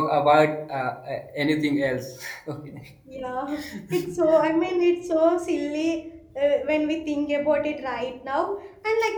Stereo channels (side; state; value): both; identical; correlation 1.00